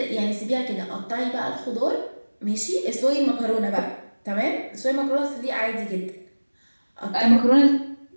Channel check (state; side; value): inverted; both; correlation -1.00